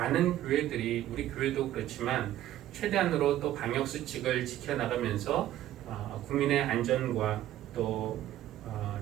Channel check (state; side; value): quieter; left; 13.2 dB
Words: 교회들이 우리 교회도 그렇지만 최대한으로 또 방역 수칙을 지켜나가면서 국민의 안전과 또